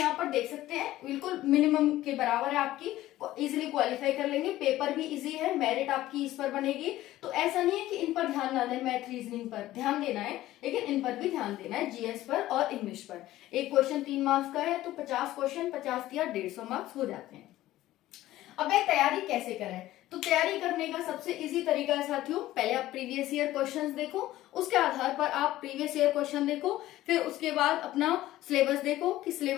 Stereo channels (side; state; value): right; quieter; 15.3 dB